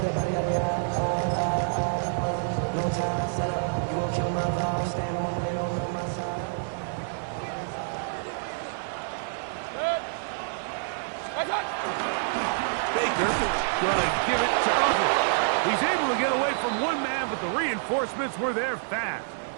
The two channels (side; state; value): left; silent; 60 dB below the other